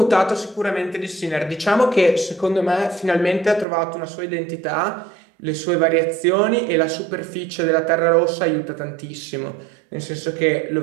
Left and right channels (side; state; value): left; drops out; at 3.7 s